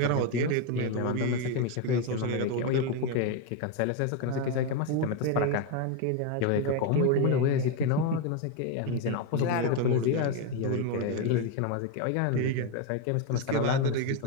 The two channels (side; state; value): both; different; correlation 0.02